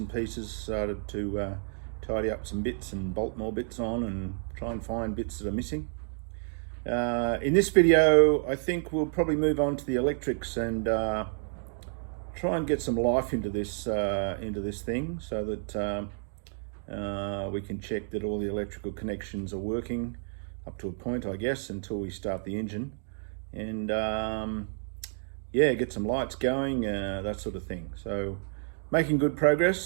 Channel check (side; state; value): left; silent; digital silence